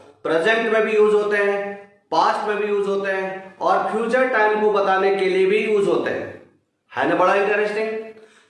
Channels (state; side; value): identical; both; correlation 1.00